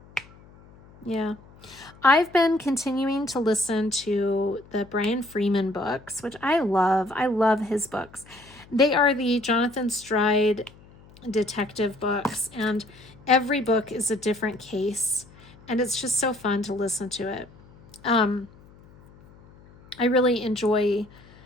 Yeah. I've been continuing to listen to the Brian Freeman books, which I love. I love his books. They are the Jonathan Stride detective books, and every book is a different case, and it's just so fun to listen to it. I really enjoy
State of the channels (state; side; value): noise; left; hum, 24 dB below the sound